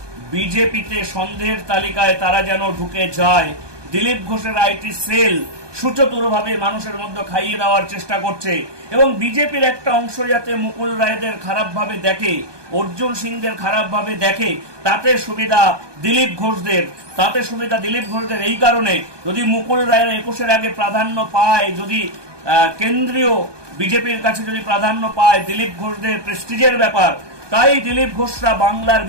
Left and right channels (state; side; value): late; left; 1.2 ms